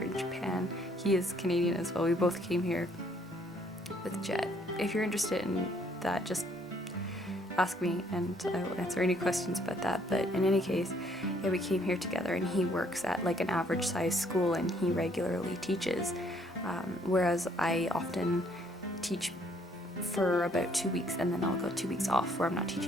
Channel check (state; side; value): normal; both; correlation 0.65